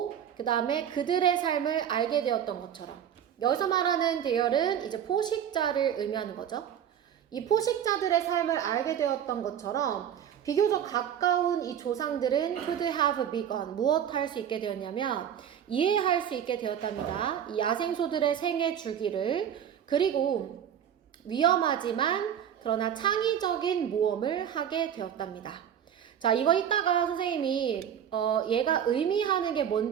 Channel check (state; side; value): quieter; left; 9.2 dB